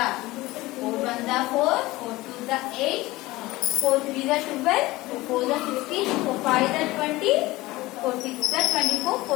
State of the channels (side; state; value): right; quieter; 19.4 dB